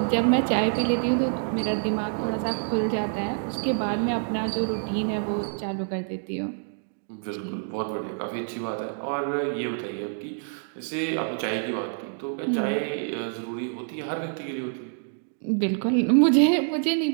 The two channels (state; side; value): silent; left; digital silence